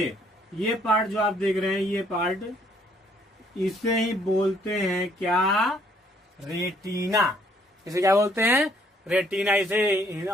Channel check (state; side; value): normal; both; correlation 0.65